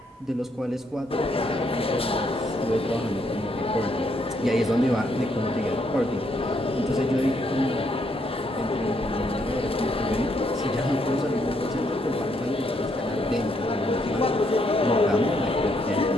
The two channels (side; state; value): both; normal; correlation 0.74